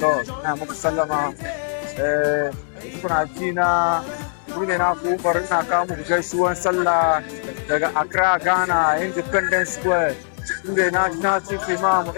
ina muku sallama. Kuna ji na ne na ku bari na kawo muku gaisuwan sallah daga Accra, Ghana, Independence Square. Inda na ci imam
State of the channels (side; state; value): right; silent; 65 dB below the other